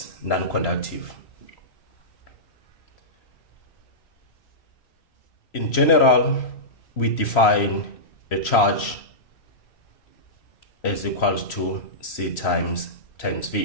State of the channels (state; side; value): late; right; 3.0 ms